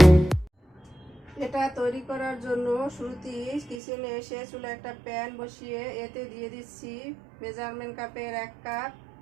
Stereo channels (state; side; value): drops out; left; at 3.8 s